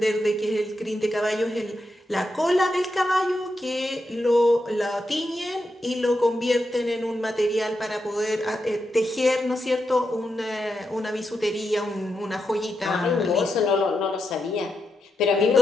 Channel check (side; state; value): both; normal; correlation 0.85